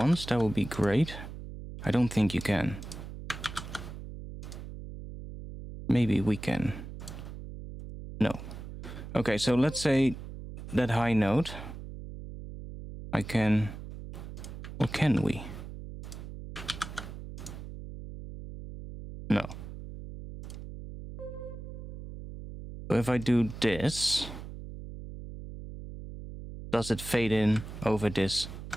That would be great. I don't think you can. Maybe we can. No. Okay, so let's say that high note. I can... Or can we? No. So if I do this, does it fade in over this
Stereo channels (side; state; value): right; noise; hum, 11 dB below the sound